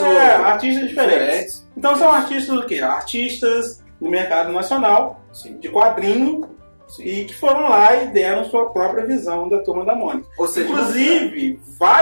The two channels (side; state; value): both; inverted; correlation -1.00